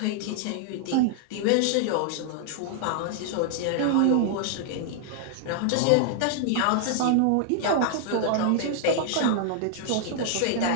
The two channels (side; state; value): both; different; correlation -0.01